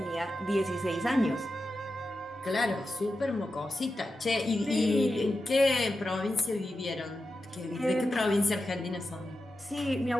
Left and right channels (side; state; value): both; normal; correlation 0.90